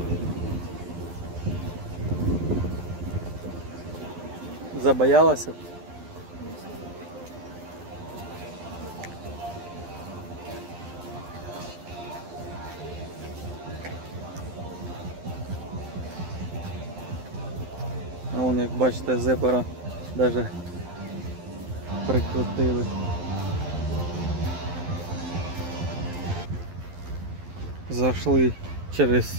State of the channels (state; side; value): late; left; 12 ms